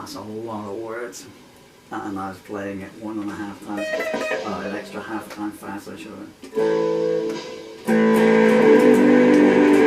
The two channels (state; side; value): identical; both; correlation 1.00